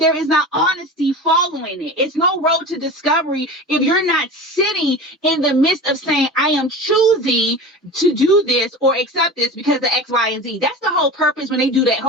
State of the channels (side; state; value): both; normal; correlation 0.32